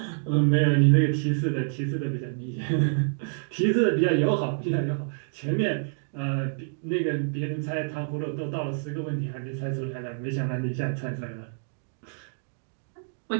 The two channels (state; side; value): silent; left; digital silence